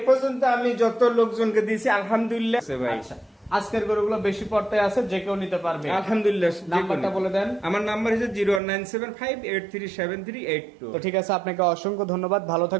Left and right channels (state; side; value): drops out; left; at 8.6 s